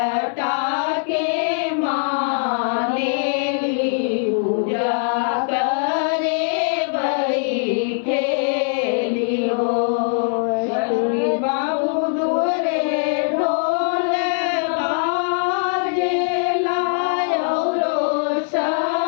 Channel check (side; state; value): right; silent; 59 dB below the other